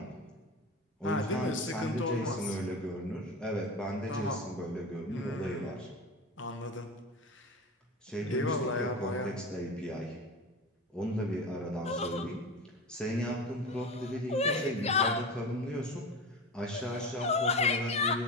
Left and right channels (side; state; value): both; normal; correlation 0.27